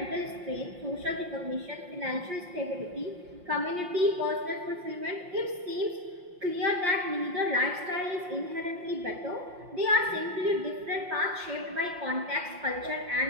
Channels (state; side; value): late; left; 5.6 ms